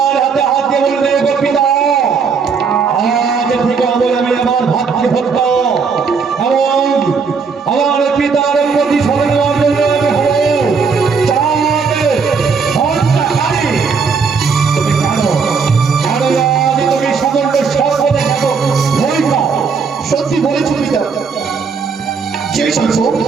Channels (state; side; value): quieter; left; 5.4 dB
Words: হাতে হাত দিয়ে বললে, গোপিতা আজ থেকে আমি আমার ভাতৃভক্ত এবং আমার পিতার প্রতি স্মরণ নেওয়ার জন্য আমি হব চাঁদ হন্তাকারী। তুমি জানো আজ তুমি সকলকে সর্বদা থাকো ভয় পাও। সত্যি বলেছে পিতা? সেই সঙ্গ